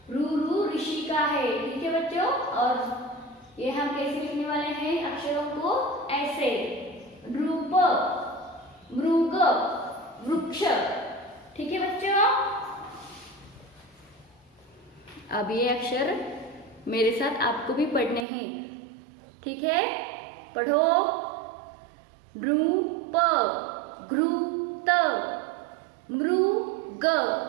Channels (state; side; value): drops out; left; at 18.2 s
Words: रू, रू ऋषि का है। ठीक है बच्चों, और ये हम कैसे लिखने वाले हैं अक्षरों को? ऐसे, रूप, मृग, वृक्ष। ठीक है बच्चों, अब ये अक्षर मेरे साथ आपको भी पढ़ने हैं। ठीक है, पढ़ो। नृप, घृत, मृग,